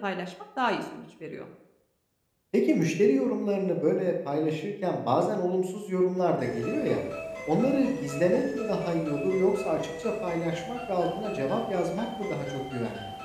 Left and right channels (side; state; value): both; identical; correlation 1.00